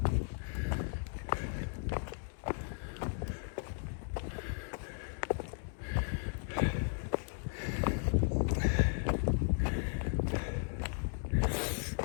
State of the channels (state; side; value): silent; right; 54 dB below the other